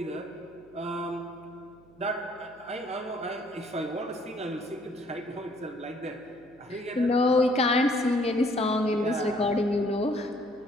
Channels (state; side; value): noise; right; hum, 27 dB below the sound